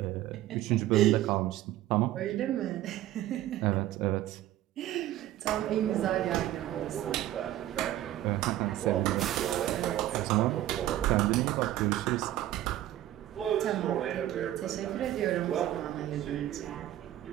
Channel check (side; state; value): left; quieter; 13.6 dB